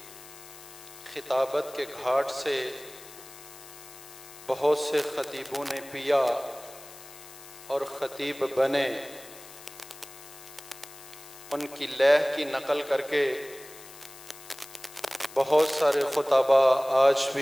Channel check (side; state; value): left; noise; hiss, 18 dB below the sound